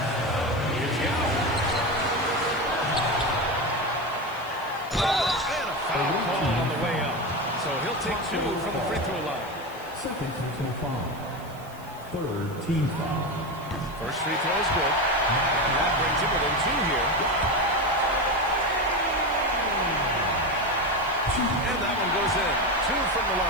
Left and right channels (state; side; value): noise; right; hiss, 23 dB below the sound